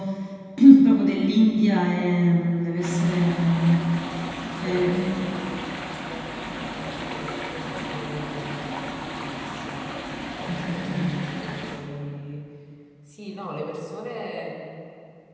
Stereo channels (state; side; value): identical; both; correlation 1.00